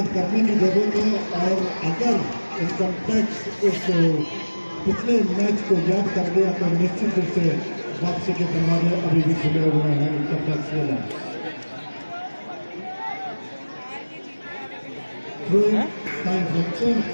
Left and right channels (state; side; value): inverted; both; correlation -1.00